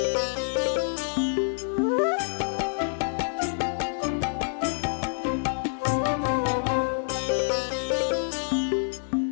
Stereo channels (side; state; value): right; silent; 60 dB below the other